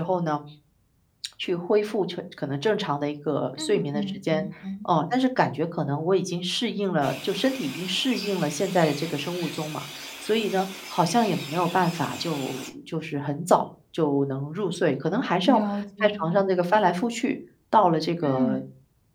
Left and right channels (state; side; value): identical; both; correlation 1.00